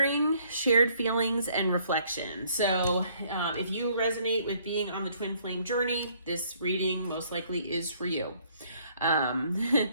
shared feelings, and reflection. So if you resonate with being on the twin flame journey, this reading most likely is for you.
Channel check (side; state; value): both; inverted; correlation -0.64